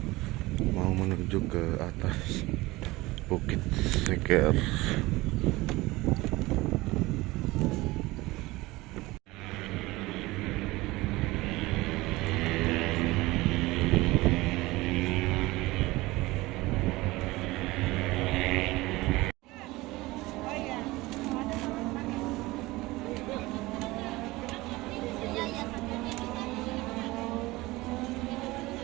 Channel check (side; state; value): left; quieter; 20.3 dB